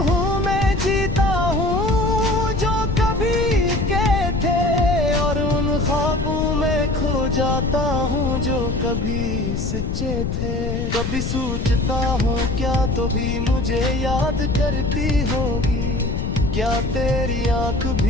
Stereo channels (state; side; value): noise; left; rumble, 2 dB below the sound